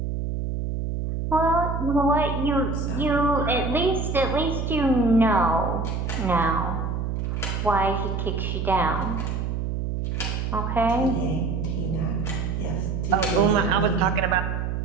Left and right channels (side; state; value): right; noise; hum, 2 dB below the sound